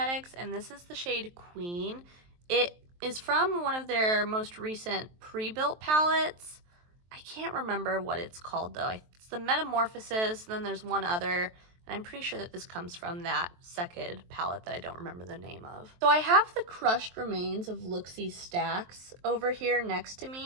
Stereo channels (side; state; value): left; late; 23 ms